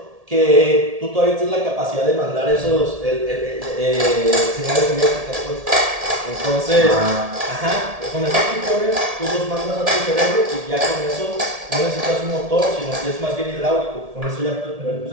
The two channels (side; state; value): left; late; 1.7 ms